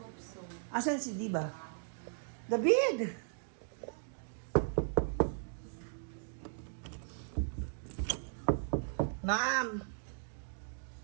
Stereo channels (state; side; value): silent; left; digital silence